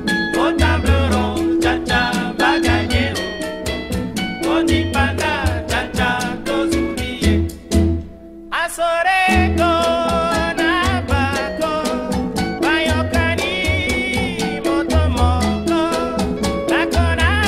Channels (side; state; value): both; identical; correlation 1.00